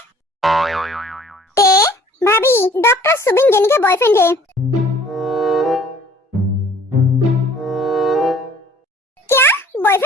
भाभी, डॉक्टर सुबिन जेनी का बॉयफ्रेंड है। क्या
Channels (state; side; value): normal; both; correlation 0.53